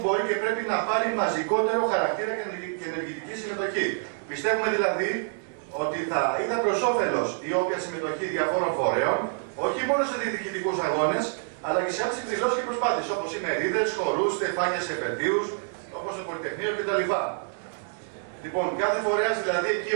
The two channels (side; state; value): left; silent; digital silence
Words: μπορεί και πρέπει να πάρει μαζικότερο χαρακτήρα και ενεργητική συμμετοχή. Πιστεύουμε δηλαδή ότι θα ήταν προς όφελος η όποια συμμετοχή διαφόρων φορέων, όχι μόνο σε διεκδικητικούς αγώνες, αλλά και σε άλλες εκδηλώσεις και προσπάθειες, όπως οι μερίδες, χορούς, στεφάνια σε επαιτίους, όπως το Πολυτεχνείο κτλ. Λοιπόν, κάθε φορέας δηλαδή εκεί